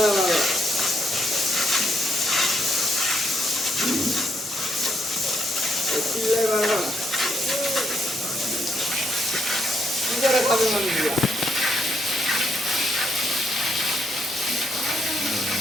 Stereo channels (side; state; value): both; normal; correlation 0.75